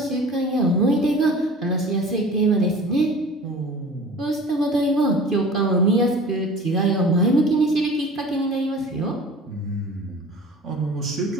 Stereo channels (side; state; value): both; normal; correlation 0.42